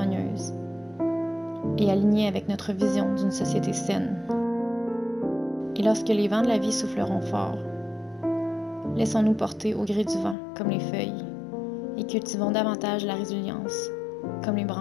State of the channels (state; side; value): drops out; right; at 10.4 s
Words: et alignée avec notre vision d'une société saine. Et lorsque les vents de la vie souffleront fort, laissons-nous porter au gré du vent comme les feuilles et cultivons davantage la résilience comme les